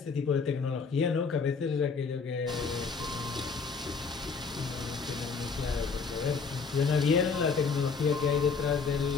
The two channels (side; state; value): right; quieter; 5.1 dB